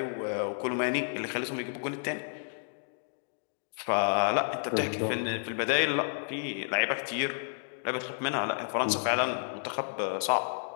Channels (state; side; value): silent; right; digital silence